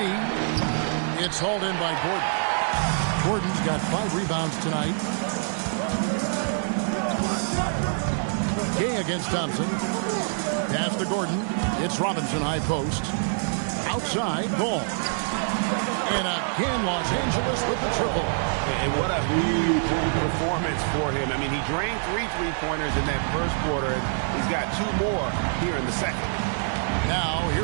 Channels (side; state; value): left; silent; 61 dB below the other